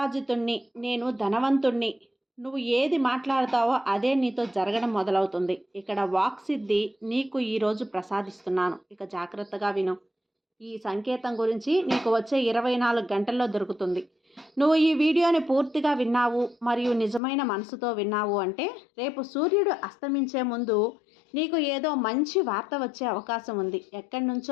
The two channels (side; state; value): right; drops out; at 17.2 s